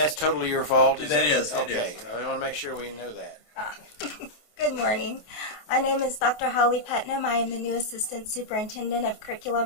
totally your fault? That is. Okay, we want to make sure we know that. Good morning. My name is Dr. Holly Putnam. I am the new Assistant Superintendent of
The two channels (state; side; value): late; right; 28 ms